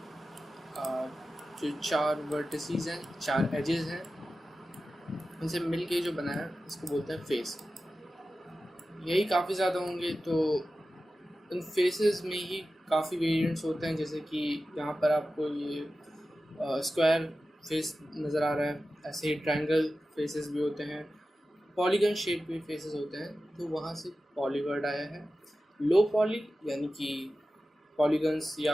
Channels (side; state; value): both; normal; correlation 0.94